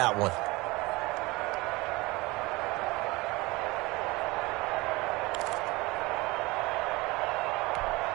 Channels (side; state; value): left; quieter; 22.6 dB